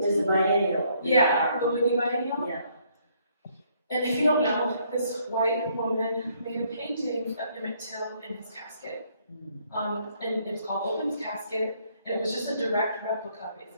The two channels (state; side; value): inverted; both; correlation -0.68